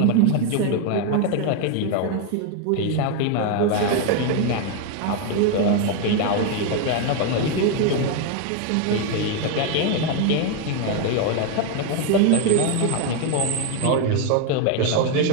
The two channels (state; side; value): different; both; correlation 0.01